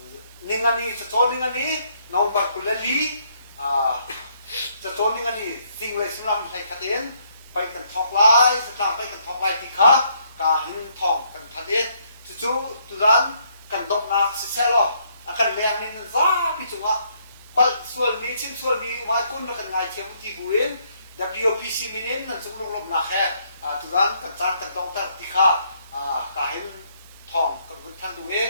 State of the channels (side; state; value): both; inverted; correlation -0.69